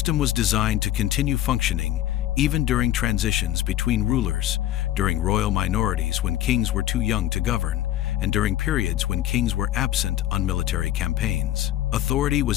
was designed to continue functioning even during transitions between rulers, during royal minorities when kings were too young to govern, and during periods when kings were absent on military campaigns. Authority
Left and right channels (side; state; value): right; quieter; 13.2 dB